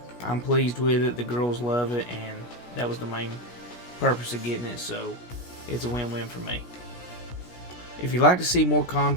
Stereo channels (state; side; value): late; right; 17 ms